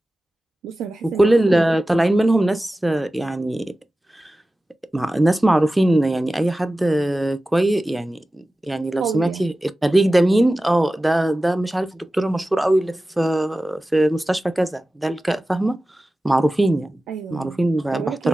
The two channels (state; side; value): normal; both; correlation 0.95